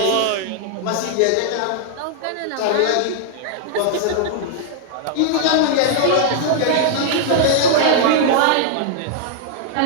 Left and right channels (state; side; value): different; both; correlation -0.01